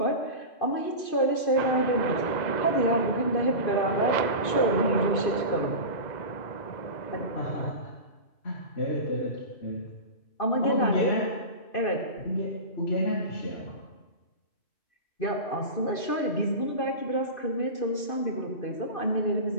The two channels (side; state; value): right; late; 2.5 ms